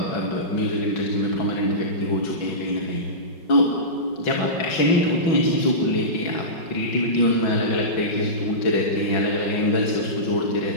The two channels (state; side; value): late; right; 5.4 ms